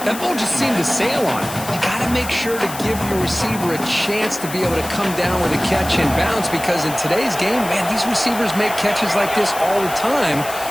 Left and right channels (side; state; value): left; noise; hiss, 11 dB below the sound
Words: That ball just seemed to sail on it. You got to make sure to give your receiver a chance to be able to come down with a catch and bounce, because in today's game, man, these receivers make catches like this all the time.